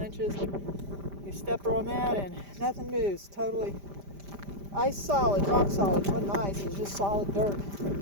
You step on that and nothing moves. Totally ice solid, rock solid. It wasn't ice, it was just solid dirt.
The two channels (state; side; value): late; left; 5.0 ms